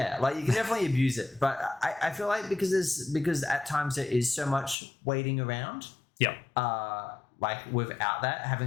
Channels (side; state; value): right; drops out; at 4.8 s